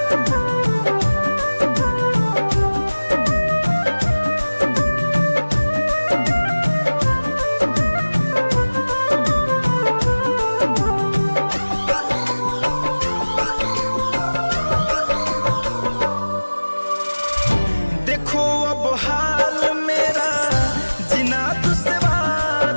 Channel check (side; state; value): both; inverted; correlation -1.00